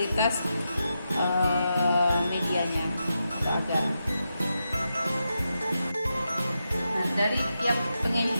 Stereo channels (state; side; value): inverted; both; correlation -0.87